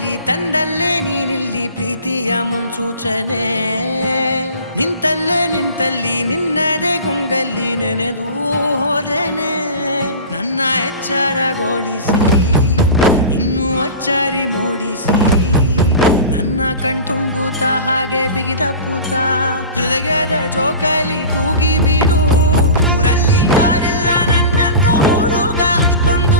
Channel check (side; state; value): both; inverted; correlation -0.35